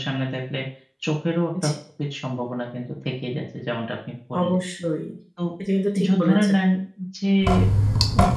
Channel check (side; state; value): both; identical; correlation 1.00